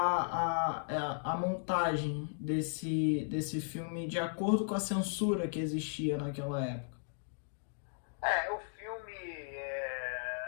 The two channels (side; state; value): right; silent; digital silence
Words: montagem desse filme de acordo com a censura que existia naquela época? O filme,